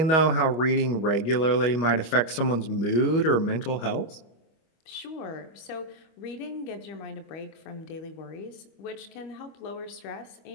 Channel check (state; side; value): late; right; 25 ms